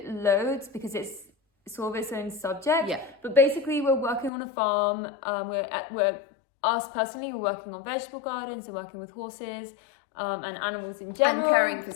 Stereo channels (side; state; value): right; drops out; at 4.3 s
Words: loads because it's sort of its own subject. Yeah. But basically, we're working on a farm. Us personally, we're working on vegetable gardens and working with horses and animals in general. And caring for